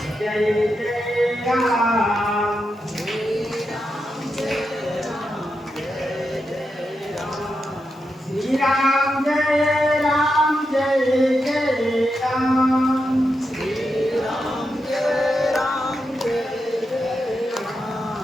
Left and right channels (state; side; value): normal; both; correlation 0.86